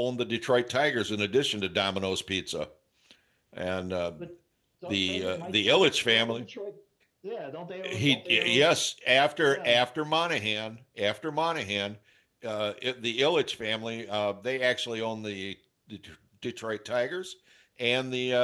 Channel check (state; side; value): identical; both; correlation 1.00